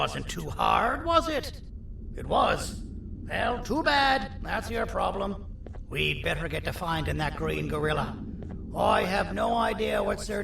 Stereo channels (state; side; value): identical; both; correlation 1.00